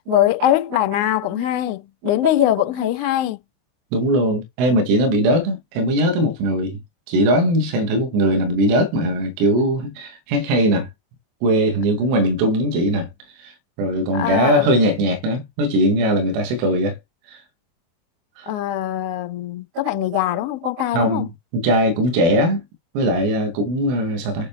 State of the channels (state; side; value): late; left; 24 ms